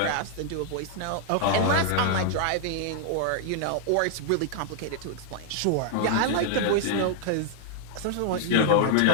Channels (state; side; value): different; both; correlation -0.01